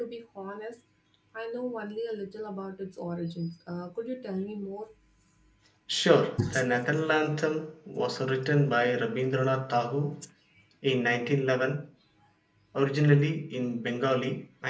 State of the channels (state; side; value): identical; both; correlation 1.00